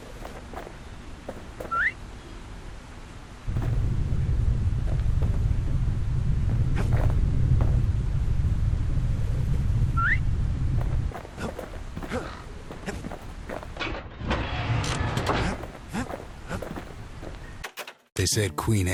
They said Queen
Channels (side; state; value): both; identical; correlation 1.00